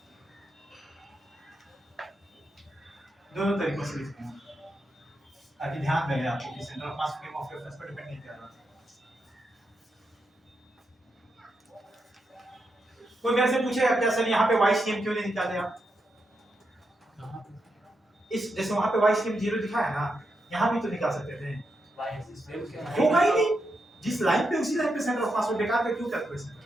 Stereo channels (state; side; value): normal; both; correlation 0.85